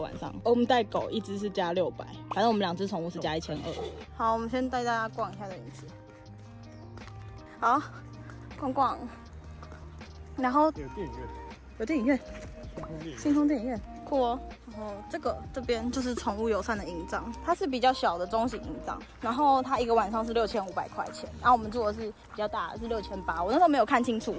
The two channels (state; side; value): identical; both; correlation 1.00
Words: 晚上，我们带狗1只是加600，反正我们2只宠物是加1200。好，我们先带大家逛一下这园区。好，逛逛，然后有电影院，有电影院，星空电影院，酷哦。然后这边就是宠物友善的营帐，它是比较小的中型营帐，然后它一个晚上是6500块钱，然后我们住的是比较大的是6800，我那时候没有看清楚，